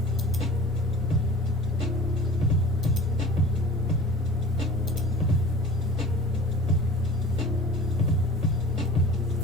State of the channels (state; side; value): normal; both; correlation 0.41